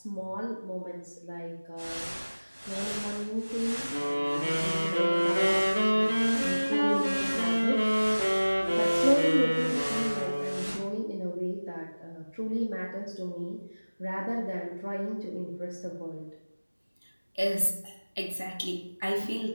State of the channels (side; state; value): both; inverted; correlation -1.00